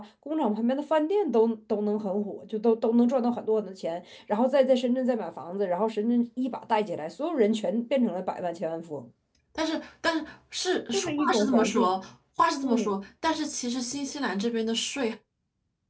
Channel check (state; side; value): identical; both; correlation 1.00